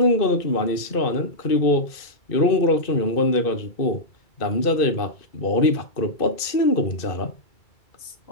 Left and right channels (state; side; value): late; right; 2.6 ms